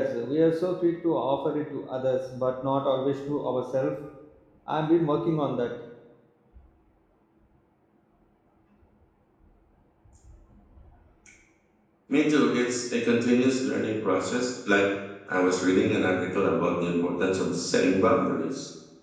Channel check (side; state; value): both; identical; correlation 1.00